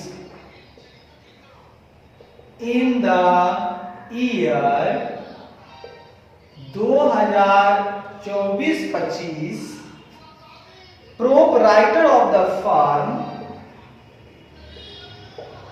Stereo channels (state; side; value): identical; both; correlation 1.00